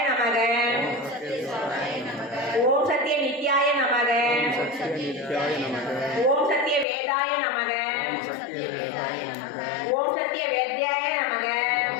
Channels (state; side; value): drops out; right; at 6.9 s